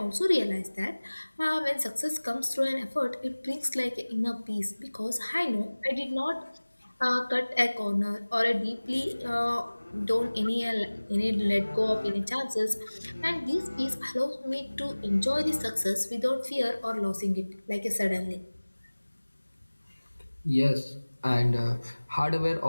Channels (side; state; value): both; inverted; correlation -1.00